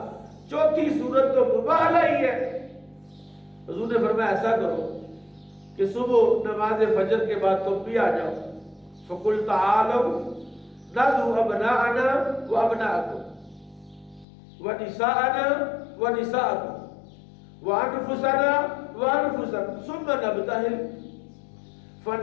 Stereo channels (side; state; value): right; drops out; at 14.2 s